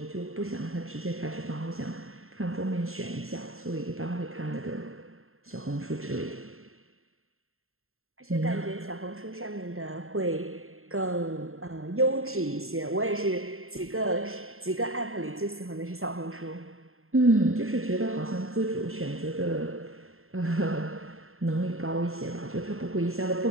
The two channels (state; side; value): late; left; 0.61 ms